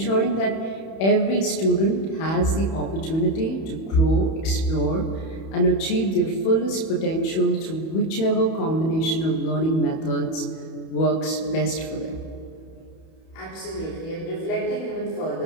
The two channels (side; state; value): right; late; 31 ms